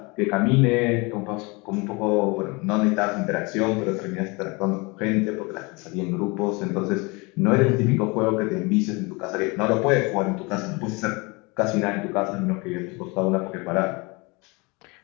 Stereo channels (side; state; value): right; quieter; 27.2 dB